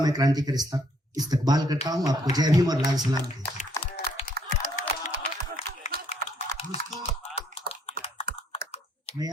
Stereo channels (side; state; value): both; normal; correlation 0.67